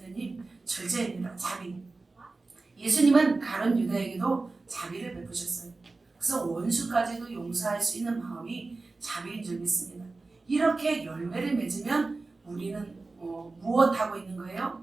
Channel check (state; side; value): quieter; left; 3.6 dB